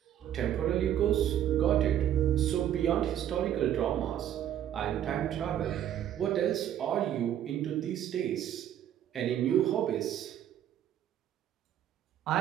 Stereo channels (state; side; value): quieter; left; 10.8 dB